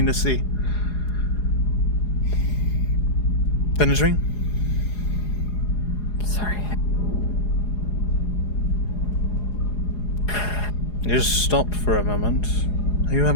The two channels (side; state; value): right; late; 4.8 ms